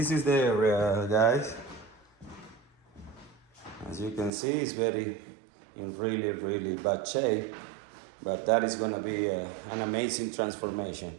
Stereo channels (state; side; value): drops out; left; at 4.3 s